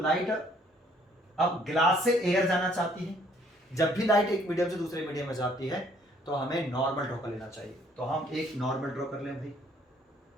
अब ग्लास से एयर जाना चाहती है। जब भी लाइट एक मीडियम से दूसरे मीडियम में जाती है तो हमें नॉर्मल ड्रॉ कर लेना चाहिए। तो हम एक नॉर्मल ड्रॉ कर लें भाई।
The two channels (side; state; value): both; normal; correlation 0.63